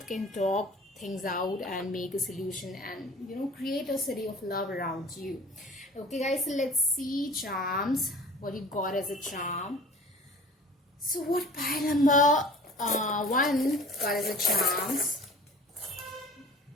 can talk things out and make a solution, and create a city of love around you. Okay guys, so let's see charms, what you got as a charm. So what pile number 1 got as a charms.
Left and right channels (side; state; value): both; normal; correlation 0.45